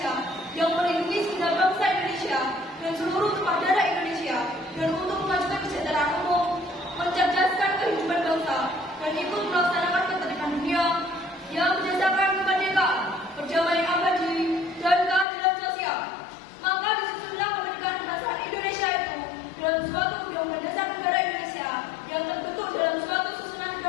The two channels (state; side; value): drops out; right; at 15.2 s